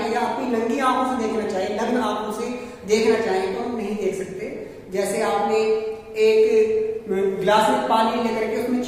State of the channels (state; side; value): identical; both; correlation 1.00